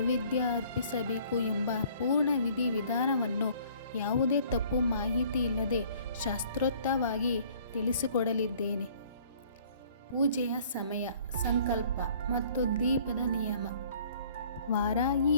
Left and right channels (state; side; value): inverted; both; correlation -0.56